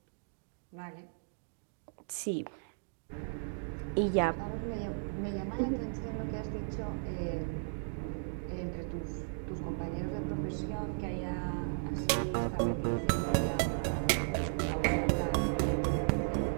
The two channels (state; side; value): silent; left; digital silence